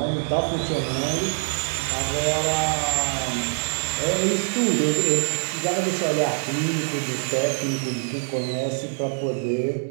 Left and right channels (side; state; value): left; silent; digital silence